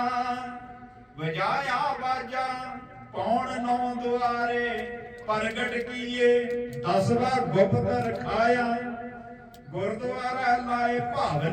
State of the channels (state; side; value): identical; both; correlation 1.00